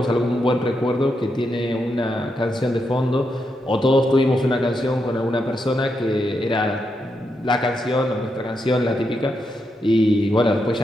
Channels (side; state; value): both; normal; correlation 0.83